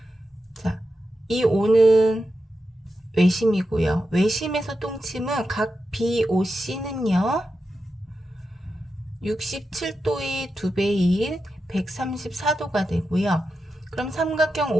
자, 이 O는 외심이고요. 외심에서 똥침은 각 BOC는요. 67도의 2배인 134도가 되고요. 그럼 삼각형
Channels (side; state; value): both; normal; correlation 0.89